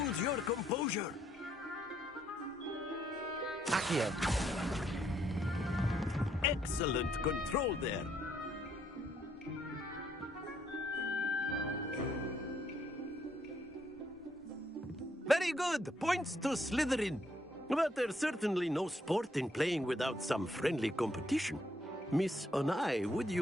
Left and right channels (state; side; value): normal; both; correlation 0.72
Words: your composure. Accio. Excellent control there. Very good. Points to Slytherin. But there's certainly no sport in playing without some friendly competition. Miss Onai, would